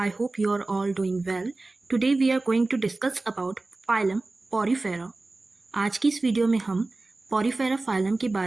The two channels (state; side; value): quieter; left; 3.2 dB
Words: hope you are all doing well. Today we are going to discuss about phylum Porifera. आज की इस video में हम Porifera phylum के